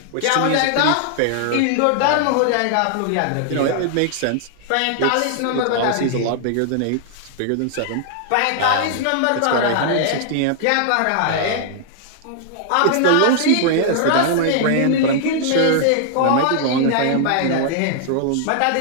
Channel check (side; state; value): both; different; correlation -0.01